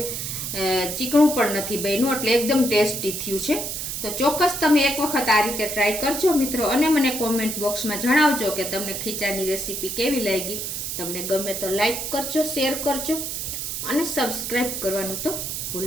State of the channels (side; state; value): right; noise; hiss, 4 dB below the sound